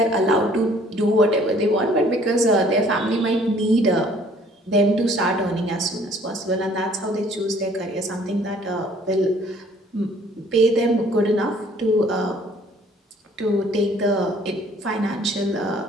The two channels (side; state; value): both; normal; correlation 0.57